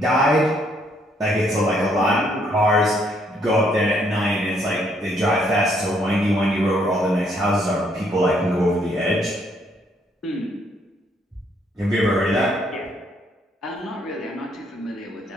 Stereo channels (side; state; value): both; normal; correlation 0.69